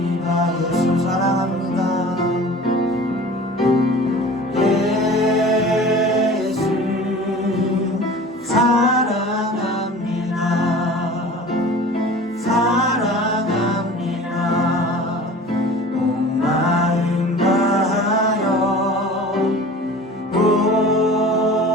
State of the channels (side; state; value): both; normal; correlation 0.41